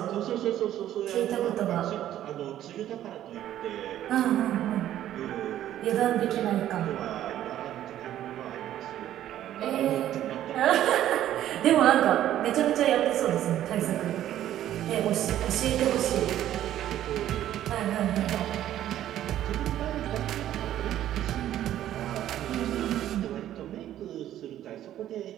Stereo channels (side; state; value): left; quieter; 12.2 dB